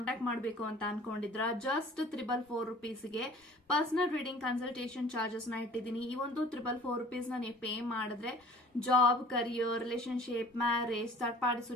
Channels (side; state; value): both; normal; correlation 0.49